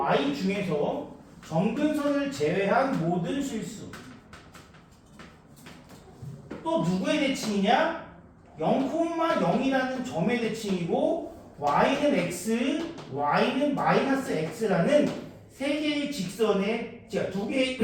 중에서 점근선을 제외한 모든 실수. 또 누구의 대칭이냐? 0,0이라는 점의 대칭이고 y는 x, y는 마이너스 x라는 세 개의 직선의, 두 개의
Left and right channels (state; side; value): identical; both; correlation 1.00